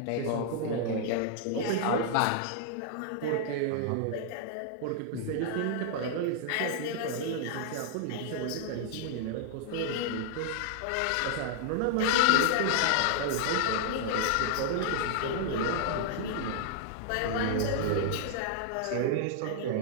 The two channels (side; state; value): both; different; correlation -0.01